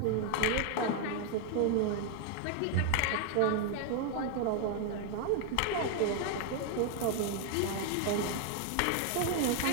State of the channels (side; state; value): both; different; correlation 0.00